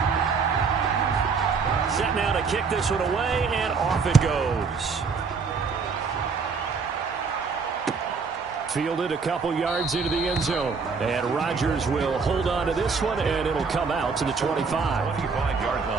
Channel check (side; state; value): left; quieter; 5.1 dB